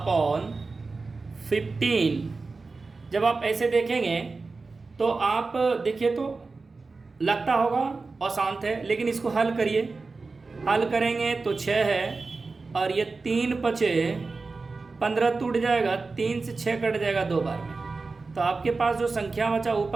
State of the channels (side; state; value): left; quieter; 4.0 dB